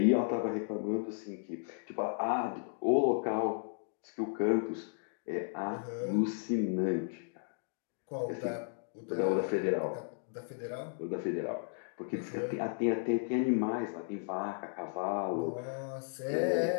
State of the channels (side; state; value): right; silent; digital silence